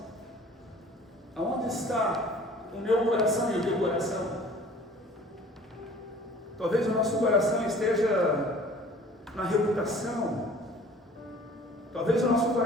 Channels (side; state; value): both; normal; correlation 0.49